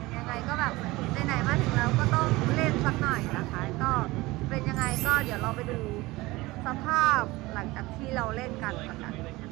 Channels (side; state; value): left; quieter; 20.6 dB